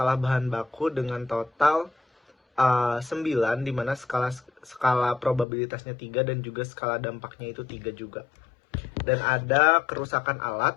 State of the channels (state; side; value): drops out; right; at 5.5 s